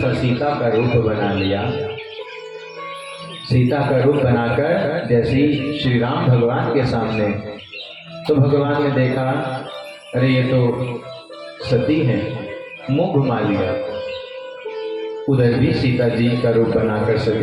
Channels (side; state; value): both; identical; correlation 1.00